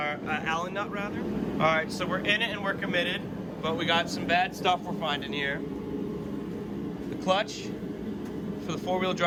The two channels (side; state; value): both; identical; correlation 1.00